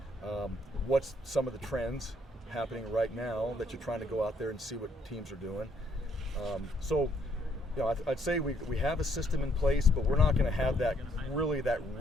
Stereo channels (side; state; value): both; normal; correlation 0.70